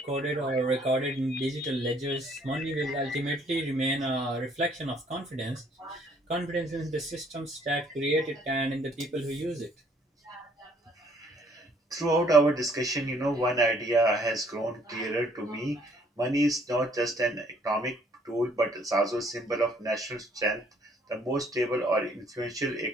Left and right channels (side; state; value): both; normal; correlation 0.63